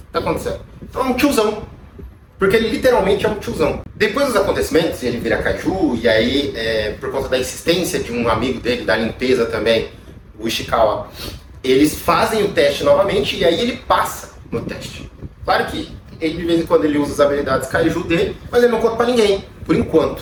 tá acontecendo? Então é um tiozão. Porque ele literalmente é um tiozão. Depois dos acontecimentos, ele vira kaiju, e aí, por conta da insistência de um amigo dele, da limpeza também, o Ishikawa, eles fazem o teste novamente, e aí ele passa no teste. Claro que ele, de vez em quando, ele usa as habilidades kaiju dele, mas ele não conta pra ninguém, por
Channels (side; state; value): both; identical; correlation 1.00